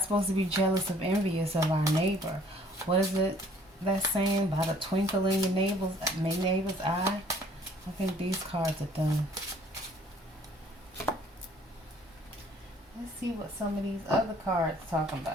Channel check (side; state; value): both; normal; correlation 0.58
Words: supposed to be jealous of envious of our neighbor. What is it that saying about a twinkle in your neighbor's eye? I think these cards are done. Let's see what some of these other cards talking